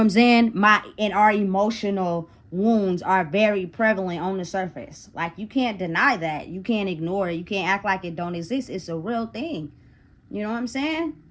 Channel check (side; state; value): both; identical; correlation 1.00